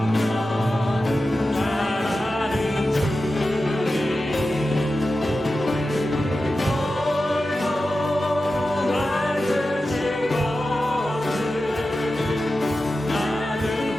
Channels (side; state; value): both; normal; correlation 0.92